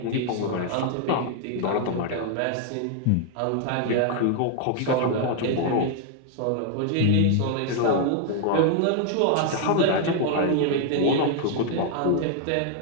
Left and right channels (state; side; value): different; both; correlation 0.00